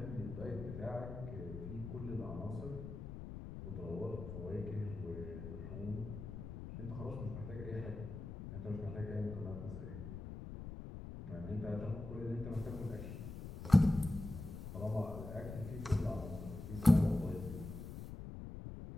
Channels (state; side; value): noise; left; rumble, 9 dB below the sound